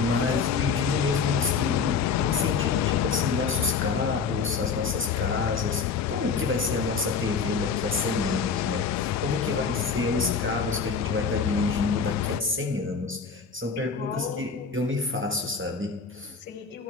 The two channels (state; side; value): quieter; right; 5.5 dB